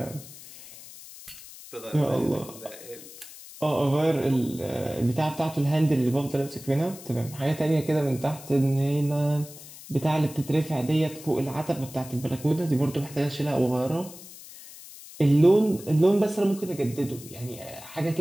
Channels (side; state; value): left; noise; hiss, 17 dB below the sound